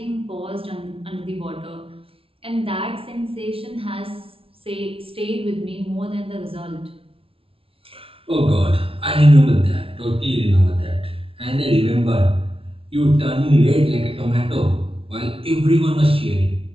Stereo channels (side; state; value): left; late; 0.26 ms